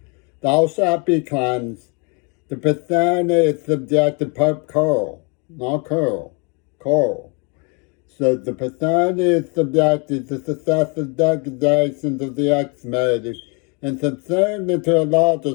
Thou shalt be cleansed. The Bethany is subjected Pope Carl, not Carl, Carl. So the Bethany is subjected to successive degradations of the ex-made and subsumed into a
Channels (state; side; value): quieter; right; 33.5 dB